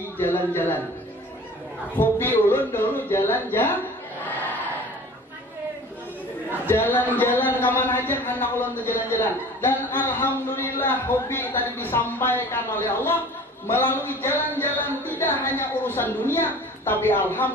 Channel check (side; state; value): both; normal; correlation 0.43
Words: jalan-jalan. Hobi ulun dulu jalan-jalan. Jalan-jalan kemana aja anak ulun tuh jalan-jalan. Dan alhamdulillah hobi tadi disampaikan oleh Allah melalui jalan-jalan tidak hanya urusan dunia, tapi